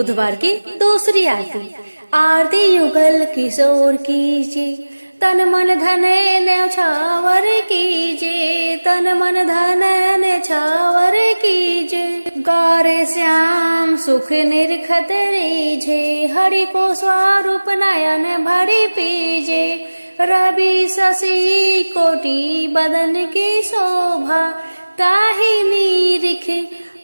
की दूसरी आरती। आरती युगल किशोर कीजिए, तन मन धन न्यौछावर कीजिए, तन मन धन न्यौछावर कीजिए, गौरे श्याम सुख निरखत रीझे, हरि को स्वरूप नयन भरी पीजे, रवि शशि कोटि बदन की शोभा, ताहि निरिख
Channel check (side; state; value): both; inverted; correlation -1.00